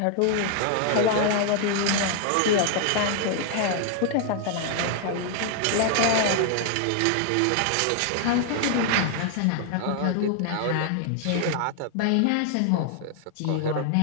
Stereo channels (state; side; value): different; both; correlation 0.00